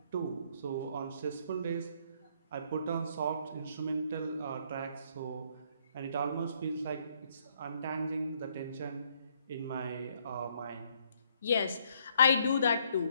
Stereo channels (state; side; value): inverted; both; correlation -0.68